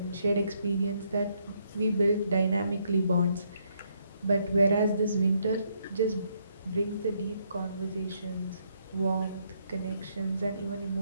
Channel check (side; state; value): both; inverted; correlation -0.73